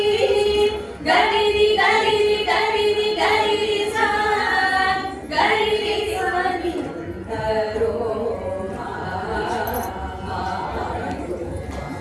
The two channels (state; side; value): identical; both; correlation 1.00